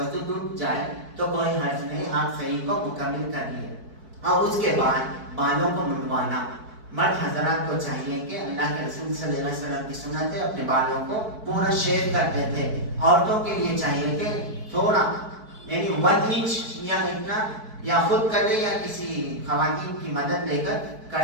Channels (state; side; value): late; left; 4.6 ms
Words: ٹوٹ جائے تو کوئی حرج نہیں، آپ صحیح کو مکمل کر لیے۔ اور اس کے بعد بالوں کو منڈوانا، مرد حضرات کو چاہیے کہ اللہ کے رسول صلی اللہ علیہ وسلم کی سنت ہے، اپنے بالوں کو پورا شیو کرتے تھے۔ عورتوں کے لیے چاہیے کہ تھوڑا، یعنی 1 انچ یا اتنا، یا خود کر لے یا کسی خواتین کی مدد لے